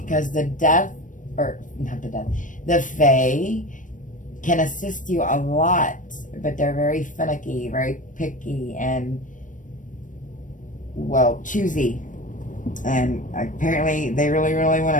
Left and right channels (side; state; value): right; late; 0.38 ms